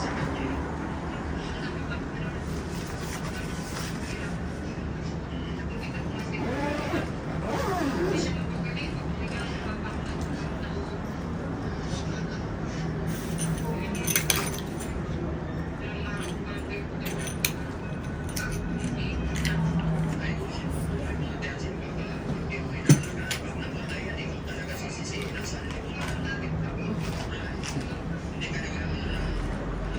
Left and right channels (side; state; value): both; identical; correlation 1.00